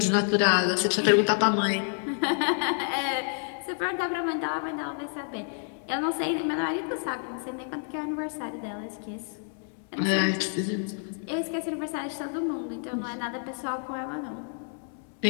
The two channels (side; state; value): right; silent; 58 dB below the other